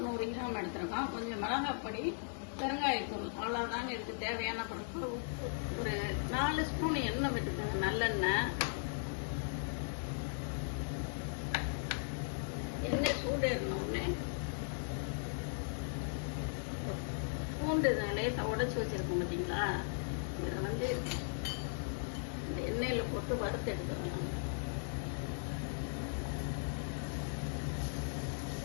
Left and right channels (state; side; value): silent; right; digital silence